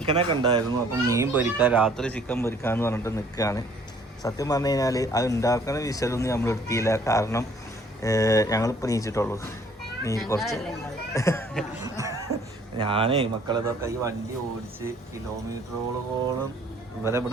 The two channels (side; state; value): both; normal; correlation 0.59